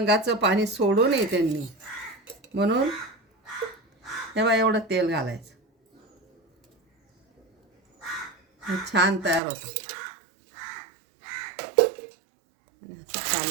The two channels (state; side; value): drops out; left; at 9.4 s